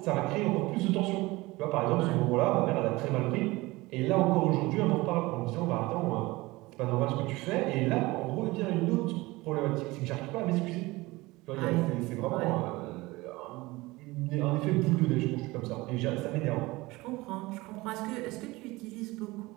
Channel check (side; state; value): left; quieter; 21.2 dB